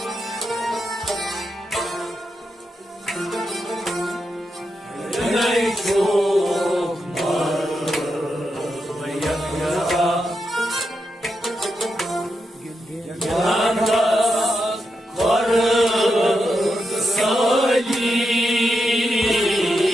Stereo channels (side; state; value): both; normal; correlation 0.85